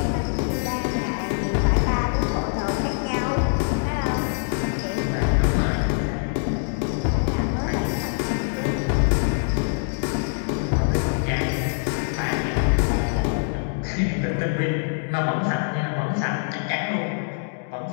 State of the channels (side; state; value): right; silent; digital silence